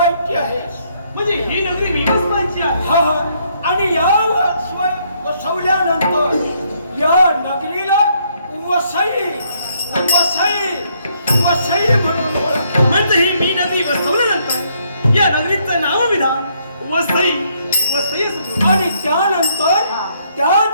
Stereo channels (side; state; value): both; inverted; correlation -0.71